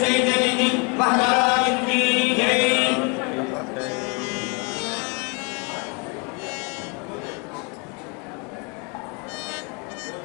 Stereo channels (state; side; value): quieter; right; 32.8 dB